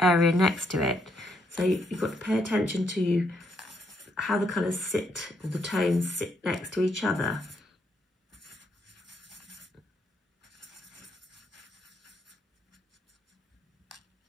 area next to it. So you've got to pay attention to how the colours sit, or the tones sit next to each other.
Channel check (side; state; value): both; normal; correlation 0.74